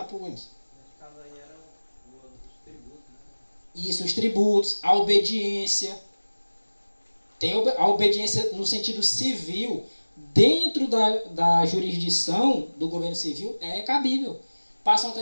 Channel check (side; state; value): both; inverted; correlation -1.00